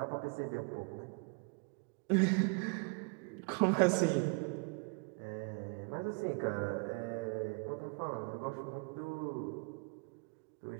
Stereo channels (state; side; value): quieter; left; 35.3 dB